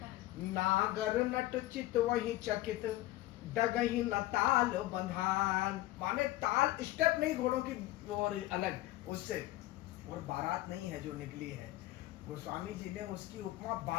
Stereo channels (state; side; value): quieter; right; 16.7 dB